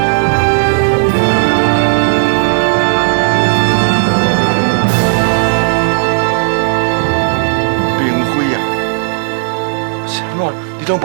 明辉啊，啥物？你拢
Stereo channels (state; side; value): silent; left; digital silence